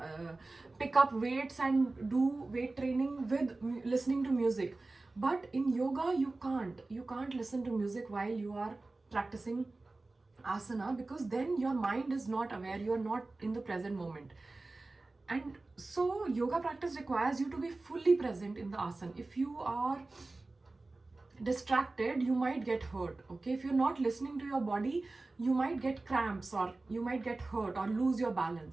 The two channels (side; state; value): left; quieter; 3.2 dB